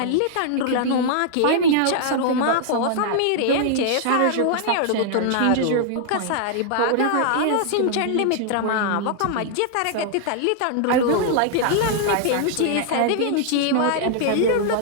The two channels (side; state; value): both; different; correlation -0.01